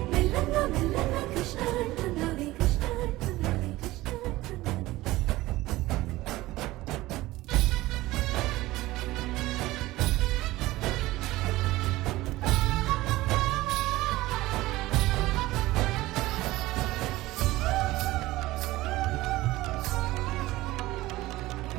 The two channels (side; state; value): left; quieter; 18.1 dB